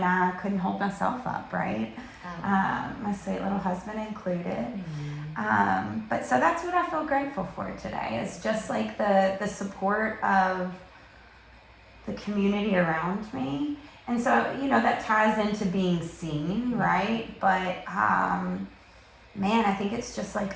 I couldn't hold myself up, right? My sweet little husband included. But so that's what I feel grateful for today, is just like the support of the community around me. And so, that ties into being seen, right? But, man, I think it's just like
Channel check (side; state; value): both; identical; correlation 1.00